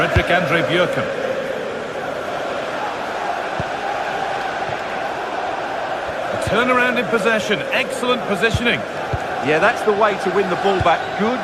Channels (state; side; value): identical; both; correlation 1.00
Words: Andre Björken. A turnaround in possession. Excellent positioning. Yeah, that's the way to win the ball back. Good